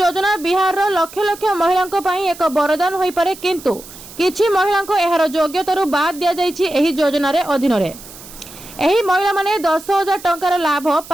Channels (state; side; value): noise; right; hiss, 17 dB below the sound